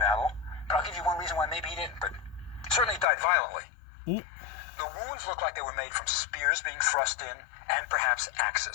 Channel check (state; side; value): drops out; right; at 3.1 s